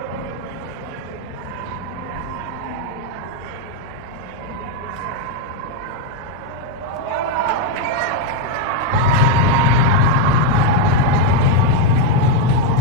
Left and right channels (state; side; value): normal; both; correlation 0.02